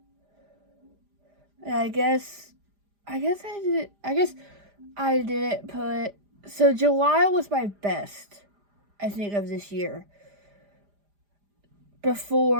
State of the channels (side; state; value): left; late; 4.9 ms